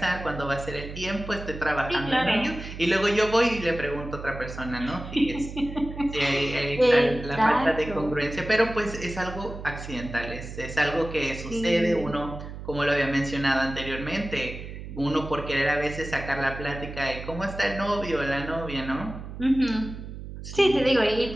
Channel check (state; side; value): noise; right; hum, 10 dB below the sound